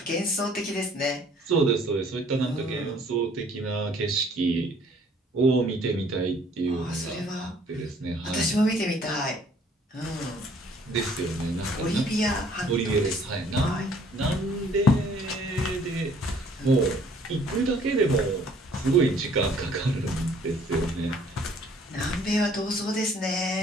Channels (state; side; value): normal; both; correlation 0.59